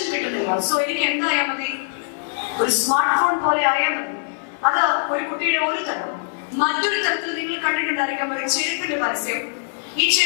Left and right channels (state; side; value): silent; right; 58 dB below the other